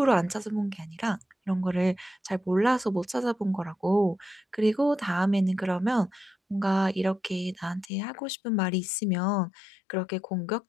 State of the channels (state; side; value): drops out; right; at 7.9 s